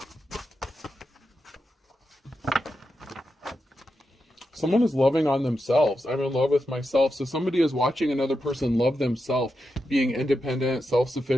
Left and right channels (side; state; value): both; normal; correlation 0.87